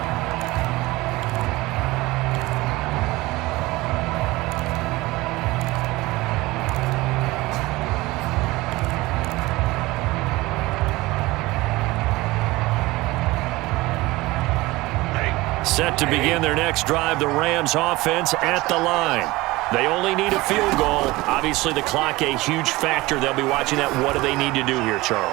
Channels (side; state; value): left; quieter; 20.3 dB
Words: Set to begin their next drive, the Rams offense at the line. They only need a field goal. Obviously, the clock a huge factor. They'll be watching that. What do they need to do here,